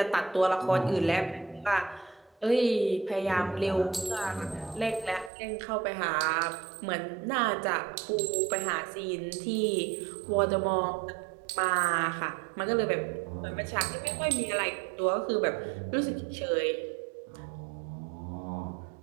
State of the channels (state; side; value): drops out; left; at 5.3 s